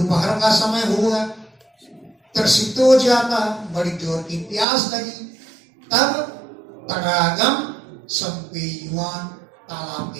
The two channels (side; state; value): left; drops out; at 4.7 s